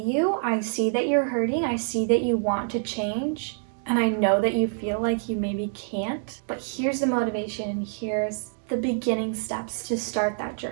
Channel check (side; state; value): left; silent; digital silence